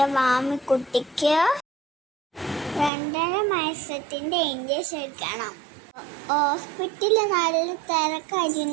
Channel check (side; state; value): left; drops out; at 2.9 s